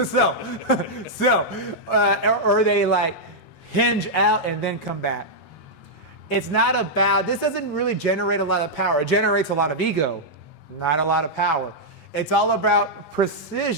Or they like hinge out and then come back. It's not about, this doesn't really generate a lot of power. It generates a lot of ego, not a lot of power. It's all about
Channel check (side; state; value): both; normal; correlation -0.05